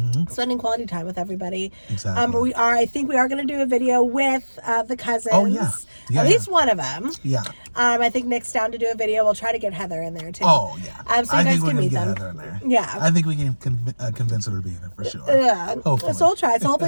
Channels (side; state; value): both; inverted; correlation -1.00